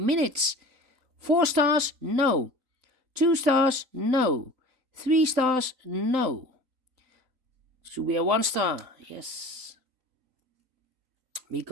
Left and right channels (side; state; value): left; late; 3.9 ms